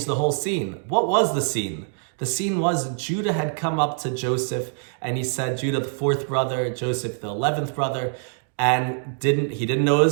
the whole scene. What was the scene? The scene was Judah had come up to Joseph, and he said, Judah the fourth brother, Joseph the 11th brother, and he didn't know it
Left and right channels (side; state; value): left; silent; 62 dB below the other